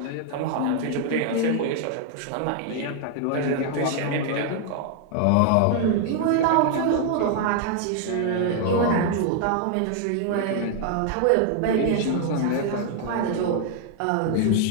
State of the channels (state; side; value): different; both; correlation 0.00